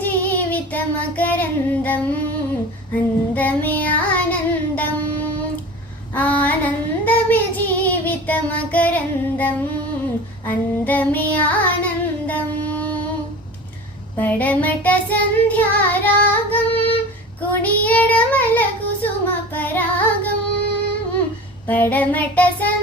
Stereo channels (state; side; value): normal; both; correlation 0.36